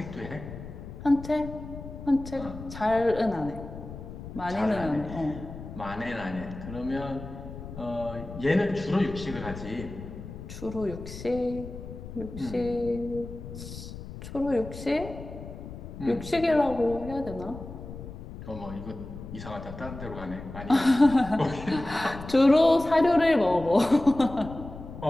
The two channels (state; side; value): noise; left; rumble, 12 dB below the sound